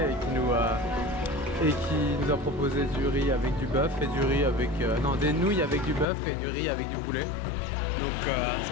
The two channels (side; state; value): right; drops out; at 6.1 s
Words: et qui nous a proposé du riz avec du bœuf et du riz avec non des nouilles avec du bœuf et du riz avec du poulet. Donc c'est